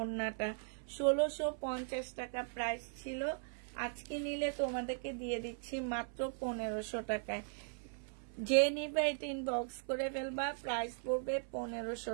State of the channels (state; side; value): silent; left; 52 dB below the other